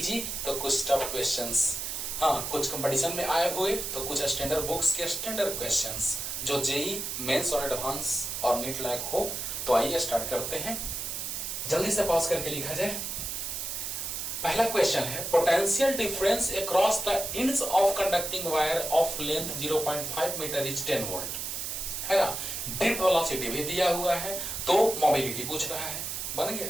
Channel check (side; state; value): right; noise; hiss, 4 dB below the sound